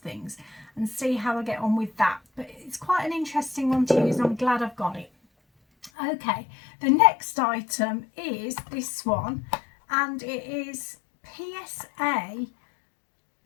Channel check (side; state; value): right; drops out; at 5.9 s